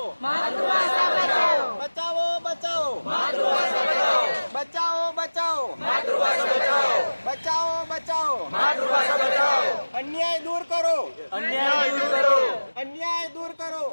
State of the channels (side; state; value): both; inverted; correlation -1.00